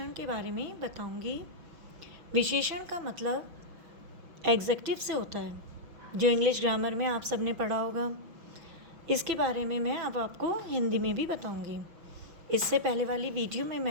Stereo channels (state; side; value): late; left; 5.8 ms